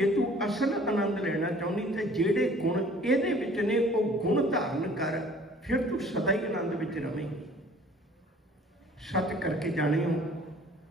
तू असल आनंद लेना चाहनी तो जेड़े गुण इहदे विच ने वो गुण धारण कर, फिर तू सदा ही आनंद विच रवेंगी। सच करके जाने हो,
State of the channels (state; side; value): normal; both; correlation 0.52